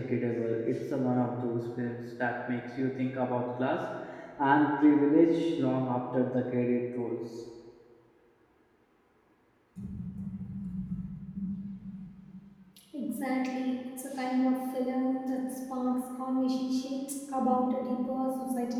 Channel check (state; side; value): identical; both; correlation 1.00